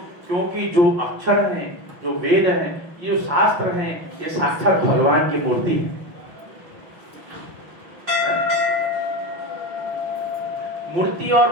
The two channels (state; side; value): late; left; 6.0 ms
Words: क्योंकि जो अक्षर हैं, जो वेद हैं, ये जो शास्त्र हैं, ये साक्षात भगवान की मूर्ति है। मूर्ति